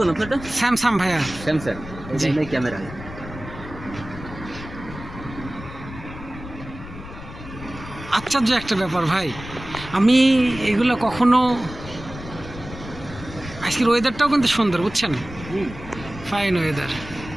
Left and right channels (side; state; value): left; noise; rumble, 13 dB below the sound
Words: আপনারটা? স্যামসাং ভাইয়া। স্যামসাং। জি। এই ক্যামেরা। আশ্চর্য একটা ব্যাপার ভাই, আমি এগুলো কখনো। আজকের ওয়েদারটাও কিন্তু সুন্দর, বুঝছেন? Fine weather.